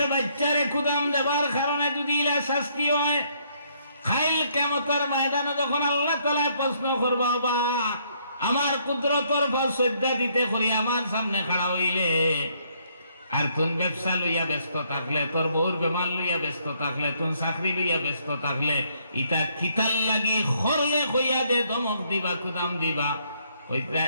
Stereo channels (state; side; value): inverted; both; correlation -0.69